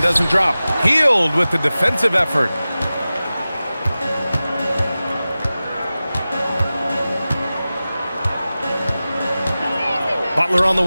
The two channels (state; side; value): inverted; both; correlation -0.96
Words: drop. Hield with the defensive effort. Butler on the